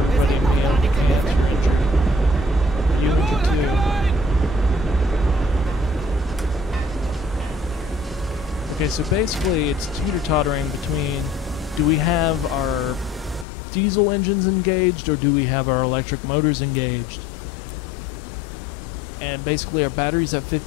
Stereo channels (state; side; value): drops out; right; at 13.5 s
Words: a meal if you can't. You're injured. Are you injured too? Okay, so basically it's teeter-tottering between, do we have our diesel engines engaged or do we have our electric motors engaged? And basically our battery's at